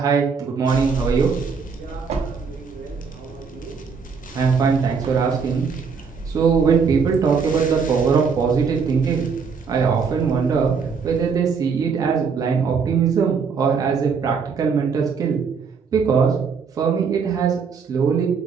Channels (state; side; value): quieter; left; 5.7 dB